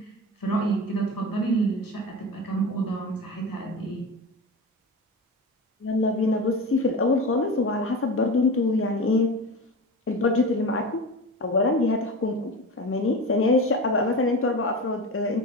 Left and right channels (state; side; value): normal; both; correlation 0.27